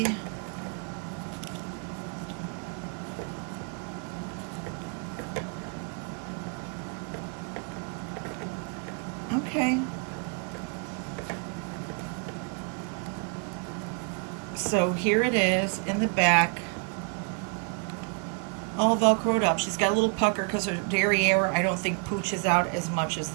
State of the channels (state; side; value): quieter; left; 36.0 dB